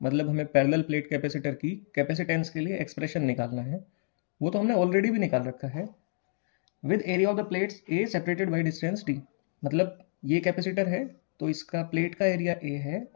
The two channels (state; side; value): silent; right; digital silence